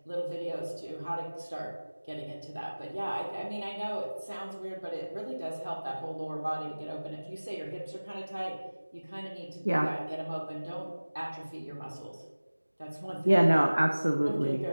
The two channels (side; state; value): both; inverted; correlation -1.00